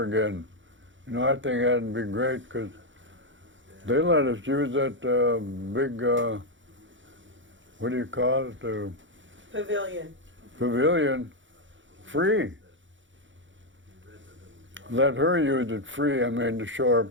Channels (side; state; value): left; late; 0.55 ms